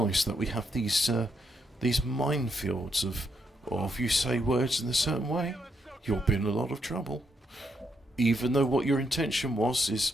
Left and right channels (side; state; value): both; normal; correlation 0.78